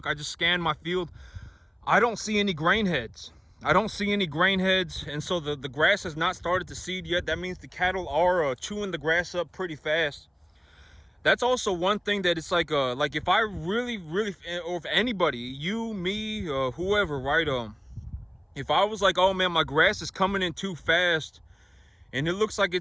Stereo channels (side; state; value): both; identical; correlation 1.00